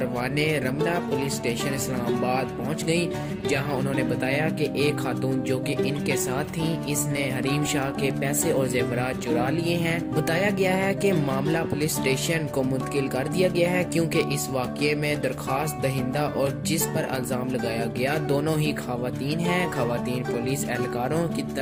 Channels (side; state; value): both; identical; correlation 1.00